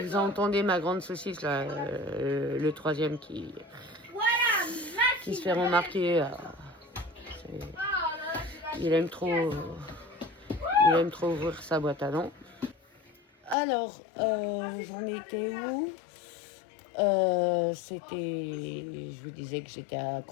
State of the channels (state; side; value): drops out; right; at 13.6 s